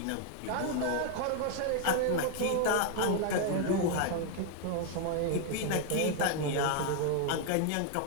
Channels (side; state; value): both; different; correlation 0.00